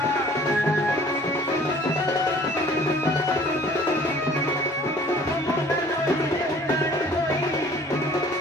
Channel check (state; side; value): normal; both; correlation 0.52